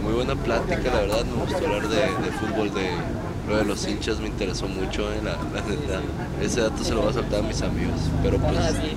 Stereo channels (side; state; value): both; identical; correlation 1.00